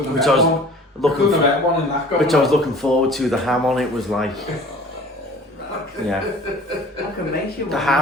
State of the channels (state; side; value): normal; both; correlation 0.47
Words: have which met I was one. looking Couldn't have for, met one in that going which I was on. looking forward to. The ham on it was like, yeah, I can make you one. the